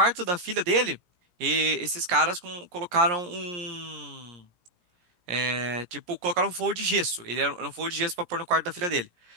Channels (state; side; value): late; left; 17 ms